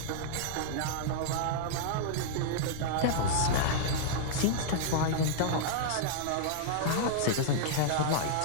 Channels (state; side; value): different; both; correlation -0.02